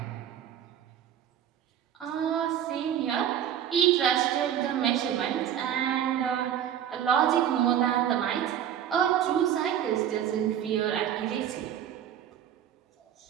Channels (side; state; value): left; quieter; 9.9 dB